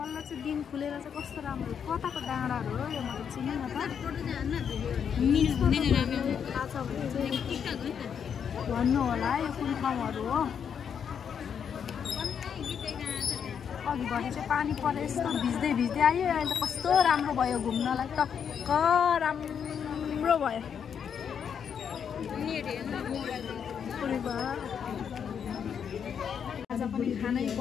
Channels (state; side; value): quieter; right; 7.6 dB